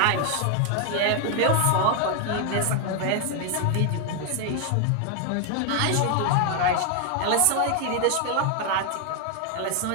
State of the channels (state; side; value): different; both; correlation 0.00